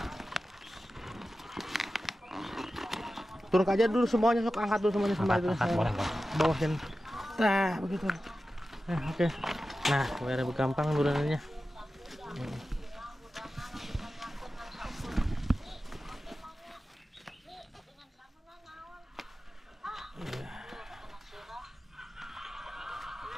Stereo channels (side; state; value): both; normal; correlation 0.93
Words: Turun aja dulu semuanya, sok angkat dulu semuanya sembari dulu. Bawah sini. Nah, begitu. Oke. Nah, biar lebih gampang turunannya.